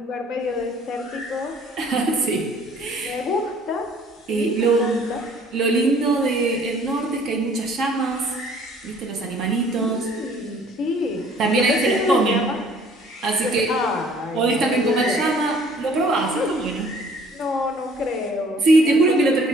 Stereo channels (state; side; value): normal; both; correlation 0.56